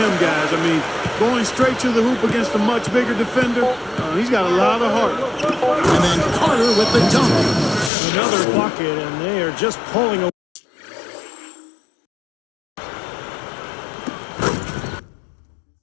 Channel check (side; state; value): right; drops out; at 7.9 s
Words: guys. I mean, going straight to the hoop against a much bigger defender, he's got a lot of heart. And then Carter with the dunk. Another bucket, and they are just pulling away.